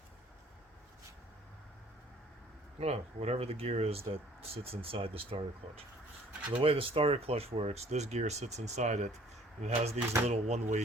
whatever the gear is that sits inside the starter clutch. So the way the starter clutch works, this gear sits inside it, and it has these little one-way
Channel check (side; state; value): both; normal; correlation 0.55